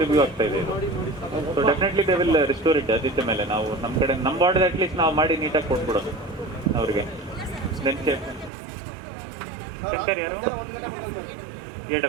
ರಿವ್ಯೂ ಆಗ್ತಾ ಇದೆ ಇದು. So definitely they will restore it. ಅದಿದ್ದ ಮೇಲೆ ನಾವು ನಮ್ಮ ಕಡೆ ನಮ್ಮ ಬಾರ್ಡ್ ಅಟ್ಲೀಸ್ಟ್ ನಾವು ಮಾಡಿ ನೀಟಾಗಿ ಕೊಟ್ಬಿಡೋದು ಅವ್ರಿಗೆ. ದೆನ್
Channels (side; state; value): left; drops out; at 8.5 s